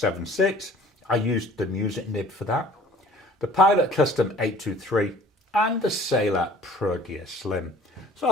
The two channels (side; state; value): both; normal; correlation 0.50